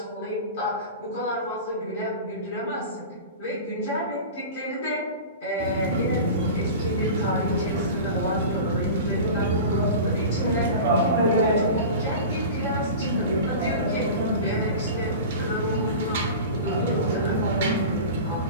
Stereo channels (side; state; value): both; inverted; correlation -0.33